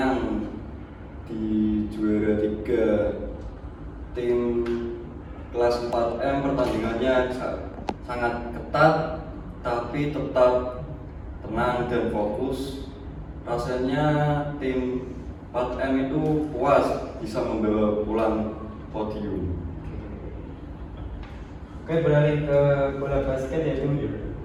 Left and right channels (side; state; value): both; identical; correlation 1.00